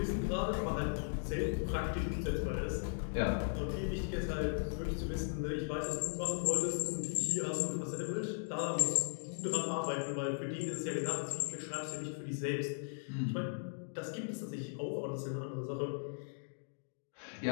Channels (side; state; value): right; silent; digital silence